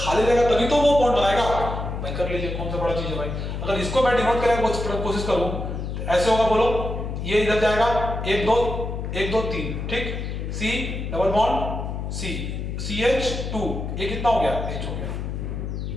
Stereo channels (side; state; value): left; noise; hum, 4 dB below the sound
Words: रहेगा तभी तो वो बॉन्ड बनाएगा। भाई कर लीजिए, कौन सा बड़ा चीज है भाई, अगर इसको मैं डिनोट करने की कोशिश करूं तो ऐसे होगा, बोलो ये इधर जाएगा, 1 2 1 2 3, ठीक, C double bond C CH2, ये कितना हो गया, H हो गया,